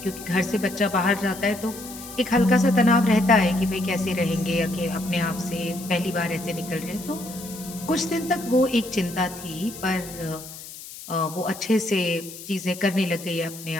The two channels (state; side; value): noise; left; hiss, 14 dB below the sound